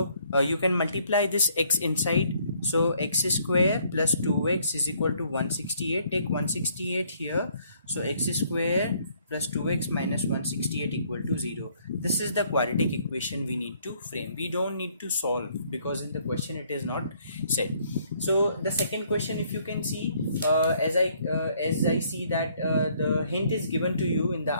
you can multiply this x inside. So x square plus 2x is equal to 168. Take 168 here. So x square plus 2x minus 168 equal to 0. This is the quadratic equation we need to frame. We don't need to solve, because in the question it is not said. So the second question, if you can see, as I see that the hint is given to you in the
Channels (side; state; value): both; inverted; correlation -0.65